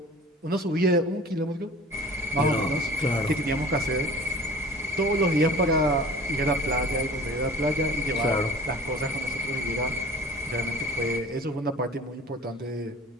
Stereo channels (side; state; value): both; normal; correlation 0.42